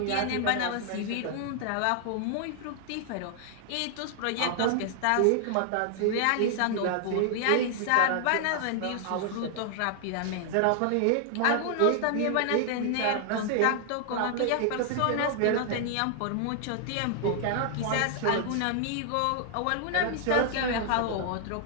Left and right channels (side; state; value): both; different; correlation 0.00